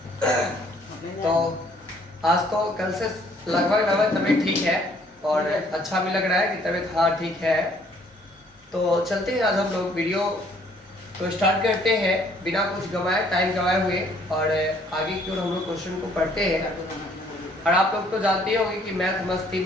तो आज तो कल से लगभग तबीयत ठीक है और अच्छा भी लग रहा है कि तबीयत हाँ ठीक है। तो चलते हैं, आज हम लोग वीडियो तो स्टार्ट करते हैं बिना कुछ टाइम गवाए हुए और आगे की ओर हम लोग क्वेश्चन को पढ़ते हैं। और आप लोग तो जानते होंगे कि मैथ मस्ती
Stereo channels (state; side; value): normal; both; correlation 0.62